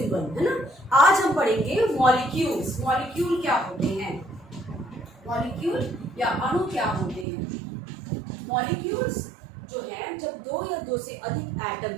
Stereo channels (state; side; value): drops out; left; at 7.2 s